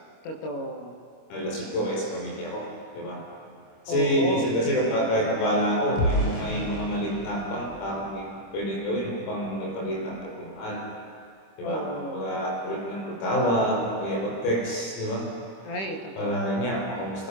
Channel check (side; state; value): right; late; 25 ms